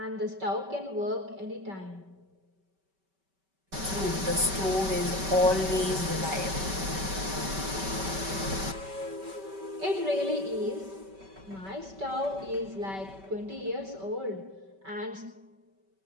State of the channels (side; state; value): left; late; 5.2 ms